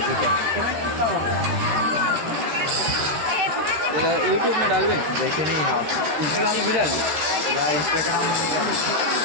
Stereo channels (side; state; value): left; late; 13 ms